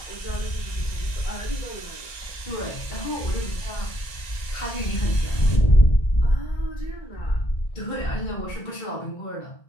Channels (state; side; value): late; right; 1.2 ms